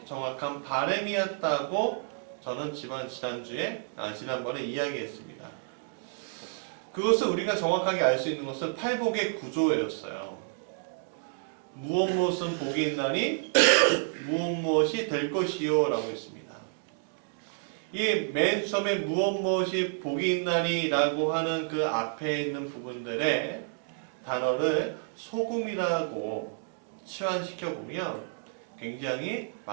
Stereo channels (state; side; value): silent; left; digital silence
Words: 정확한 바람이었다고 저는 지난번에 이야기했습니다. 그것을 우리가 정확하게 알 수 있는 것은 팔복의 구조였어요. 무엇 복이 있나니 무엇이 될 것이요 라고 했습니다. 이 맨 처음에 무엇이 복이 있나니 라고 하는 그 앞에 있는 부분들의 단어를 소금이라고 치환시켜 보면 굉장히